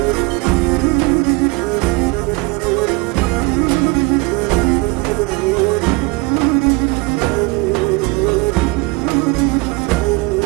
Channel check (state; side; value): quieter; left; 24.9 dB